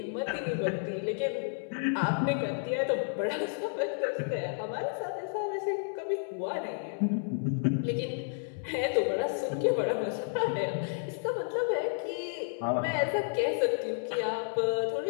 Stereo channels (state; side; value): silent; right; digital silence